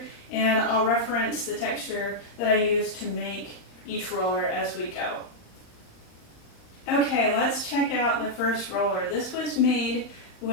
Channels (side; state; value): right; late; 39 ms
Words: and I'll reference the texture that I use to make each roller as we go. Okay, let's check out the first roller. This was made